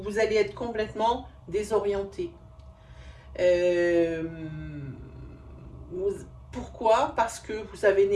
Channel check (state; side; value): identical; both; correlation 1.00